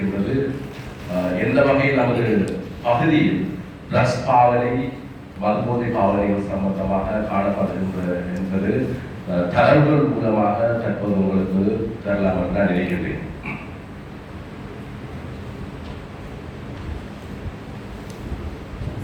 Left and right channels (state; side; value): identical; both; correlation 1.00